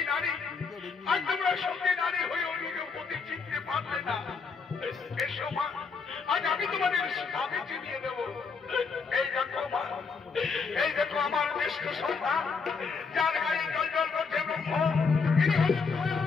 নারী, আজ তোমরা সঙ্গী নারী হয়েও নিজের প্রতি চিনতে পারলে না। এসো মা, আজ আমি তোমাদের স্বামী চিনিয়ে দেব। এই দেখো মা, এই দেখো আমার জ্যেষ্ঠ সন্তান, যার গায়ে জল জল করছে ব্রহ্ম,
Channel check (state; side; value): quieter; right; 5.1 dB